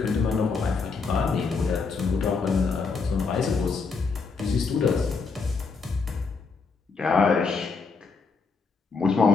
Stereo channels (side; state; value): right; quieter; 4.7 dB